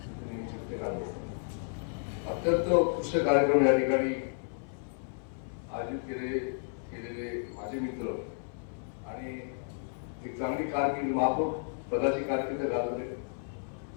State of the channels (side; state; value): right; silent; 56 dB below the other